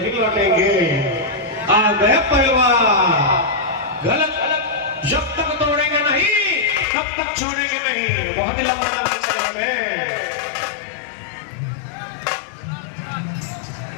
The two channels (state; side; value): drops out; right; at 6.9 s